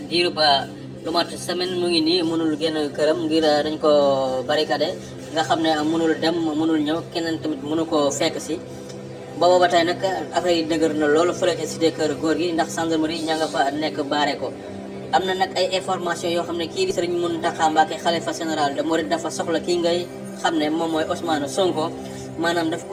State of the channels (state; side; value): identical; both; correlation 1.00